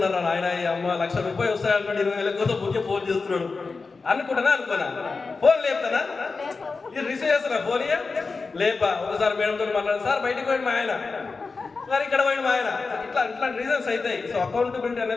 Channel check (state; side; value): quieter; right; 4.3 dB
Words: ఆయన, ఈ అమ్మ 1,00,000 రూపాయలు వస్తాయన్నట్టు 20,000 కోసం ఊకే ఫోన్ చేస్తున్నాడు అనుకున్నా. ఫోన్ లేపుతానా, ఇది రిసీవ్ చేస్తున్నా ఫోన్ లేపా. ఒకసారి మేడంతో మాట్లాడారు, సార్ బయటకు పోయింది మా ఆయన, సార్ ఇక్కడ పోయింది మా ఆయన. ఇట్లా రీజన్స్ అవుతాయి. సో అకౌంటబిలిటీ